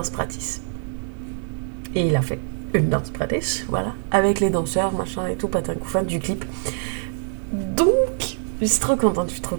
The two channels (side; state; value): left; silent; digital silence